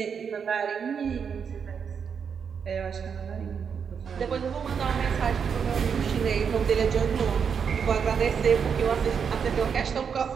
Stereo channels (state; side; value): quieter; left; 6.8 dB